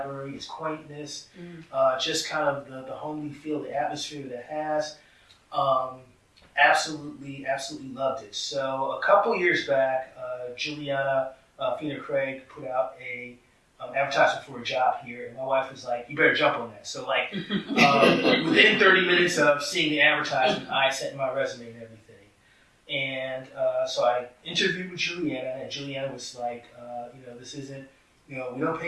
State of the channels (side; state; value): both; identical; correlation 1.00